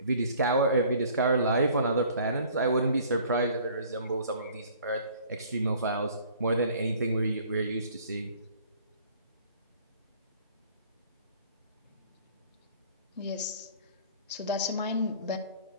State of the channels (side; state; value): both; inverted; correlation -0.53